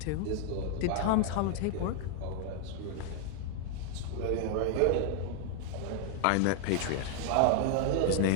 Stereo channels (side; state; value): both; different; correlation 0.00